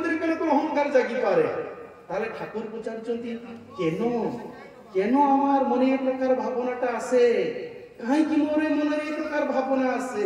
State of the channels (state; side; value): identical; both; correlation 1.00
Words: কোন অহংকার জাগি পারে? তাহলে ঠাকুর পচারুଛନ୍ତି, কেন আমার মনে এই প্রকার ভাবনাটা আসে, কাহিঁকি মোর মনে এই প্রকার ভাবনা